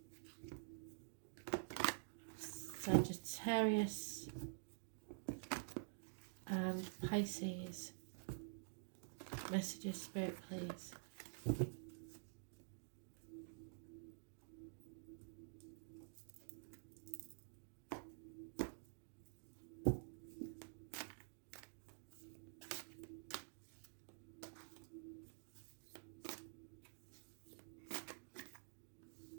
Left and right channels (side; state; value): left; silent; digital silence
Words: Sagittarius and Pisces. Messages, Spirit, please.